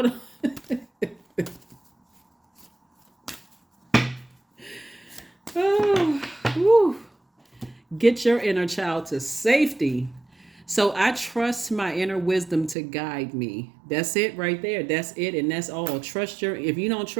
don't. Oh, whew. Get your inner child to safety. So I trust my inner wisdom to guide me. That's it right there. That's it. And that's all. If you don't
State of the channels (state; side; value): drops out; left; at 12.8 s